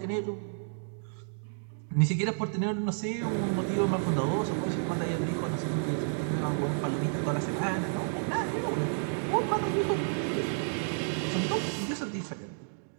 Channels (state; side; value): silent; left; digital silence